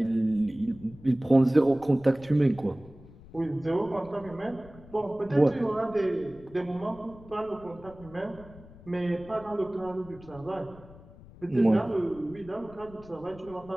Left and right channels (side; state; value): left; noise; rumble, 20 dB below the sound